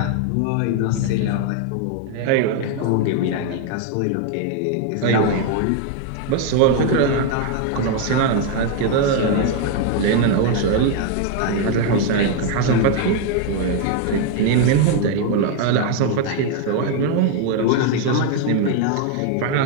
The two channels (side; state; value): both; different; correlation 0.01